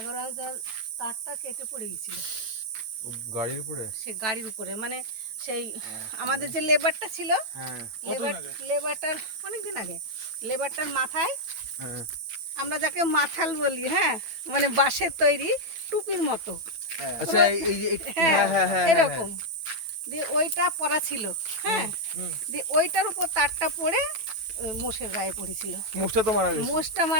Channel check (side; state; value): left; late; 9.1 ms